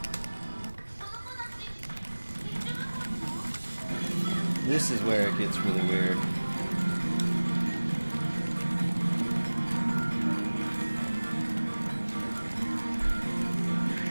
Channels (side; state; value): both; inverted; correlation -1.00